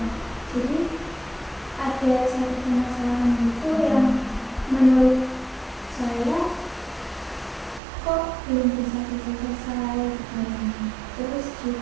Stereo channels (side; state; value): left; drops out; at 7.8 s